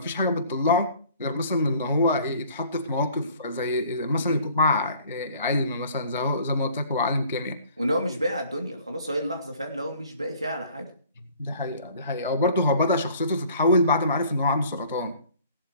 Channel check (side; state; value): both; inverted; correlation -0.53